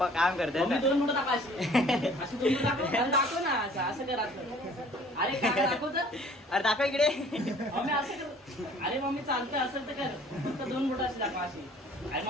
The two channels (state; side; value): normal; both; correlation 0.53